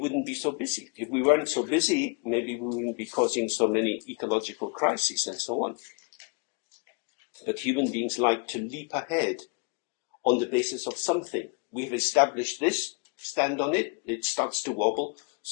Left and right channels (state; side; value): quieter; right; 33.1 dB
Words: be so busy. If we weren't so busy, maybe we wouldn't be causing so many ecological crises and so on. But human beings like to leap ahead on the basis of something. We've established this, stand on it, it starts to wobble,